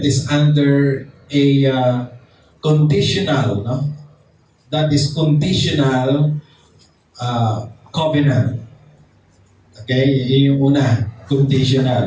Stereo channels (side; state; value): both; identical; correlation 1.00